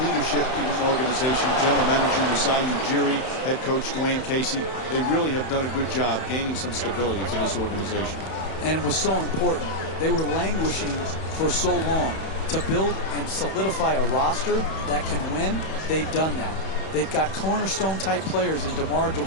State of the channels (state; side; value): late; right; 31 ms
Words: leadership in an organization. General Manager Masai Ujiri, head coach Dwayne Casey. They really have done a good job gaining some stability for this organization. And it was so important. They were languishing for so long. To build and solidify a roster that can win, they've done that. They've got cornerstone-type players in DeMar